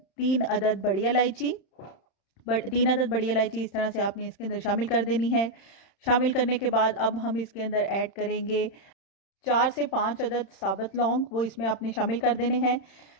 3 अदद बड़ी इलायची। 3 अदद बड़ी इलायची इस तरह से आपने इसके अंदर शामिल कर देनी है। शामिल करने के बाद अब हम इसके अंदर ऐड करेंगे 4 से 5 अदद साबुत लौंग, वो इसमें आपने शामिल कर देने हैं।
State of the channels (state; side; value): late; right; 31 ms